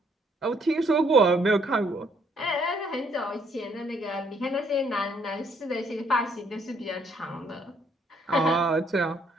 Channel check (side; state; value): both; normal; correlation 0.67